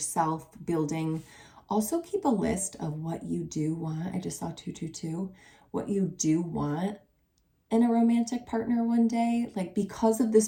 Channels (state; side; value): identical; both; correlation 1.00